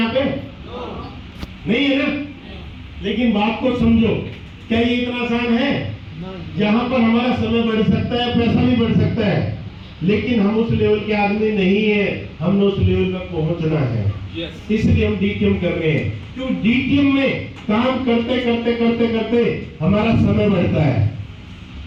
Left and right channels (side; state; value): both; identical; correlation 1.00